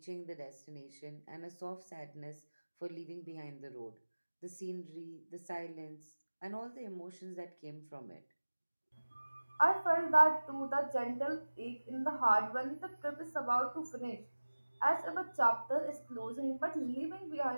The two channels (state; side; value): inverted; both; correlation -1.00